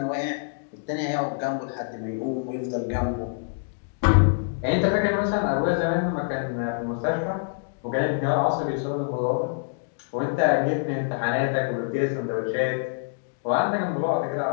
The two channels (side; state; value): right; silent; digital silence